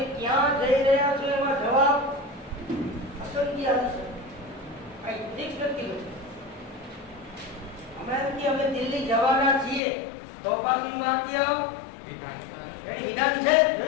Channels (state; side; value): drops out; right; at 9.8 s